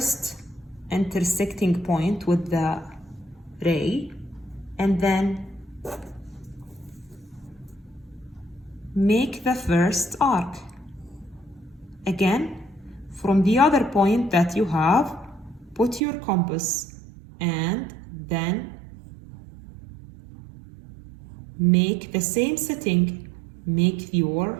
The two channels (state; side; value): drops out; left; at 16.0 s